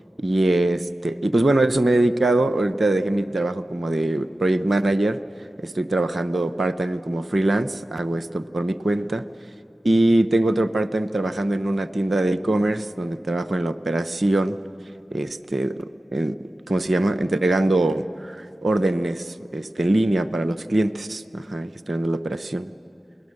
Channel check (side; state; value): both; normal; correlation 0.94